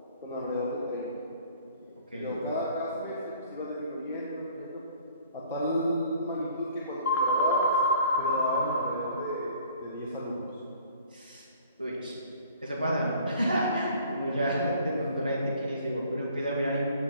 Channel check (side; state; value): both; inverted; correlation -0.54